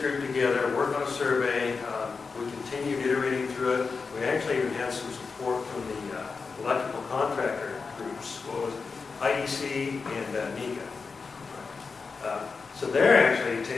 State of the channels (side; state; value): right; quieter; 4.8 dB